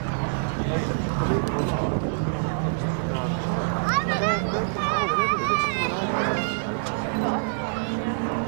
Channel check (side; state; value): left; silent; digital silence